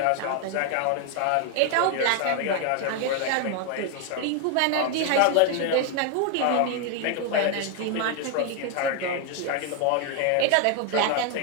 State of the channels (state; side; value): different; both; correlation 0.00